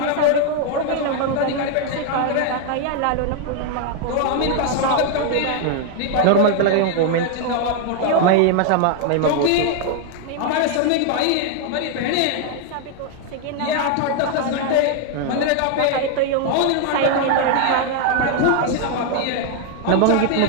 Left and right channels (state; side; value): different; both; correlation 0.00